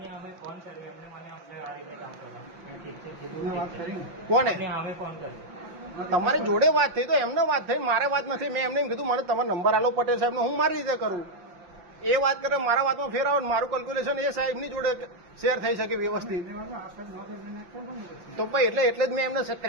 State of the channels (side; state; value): left; late; 5.8 ms